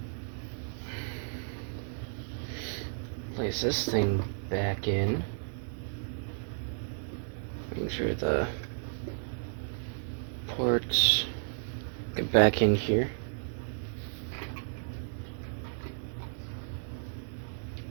Place this thing back in. Make sure the ports get back in here.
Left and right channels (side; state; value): left; silent; digital silence